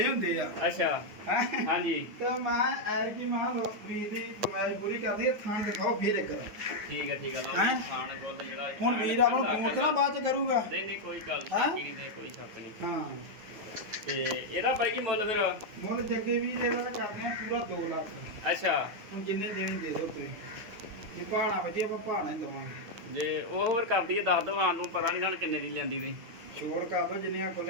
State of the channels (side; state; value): left; late; 9.5 ms